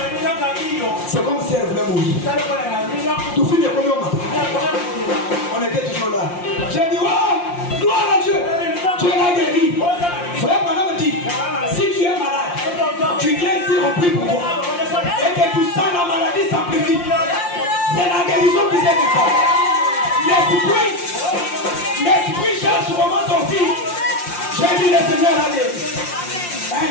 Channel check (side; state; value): right; late; 5.7 ms